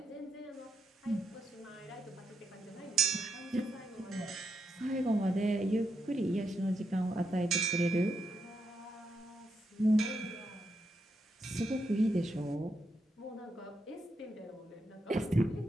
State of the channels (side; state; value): both; normal; correlation 0.82